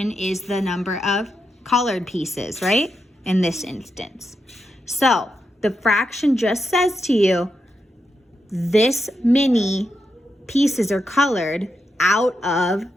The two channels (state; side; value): normal; both; correlation 0.85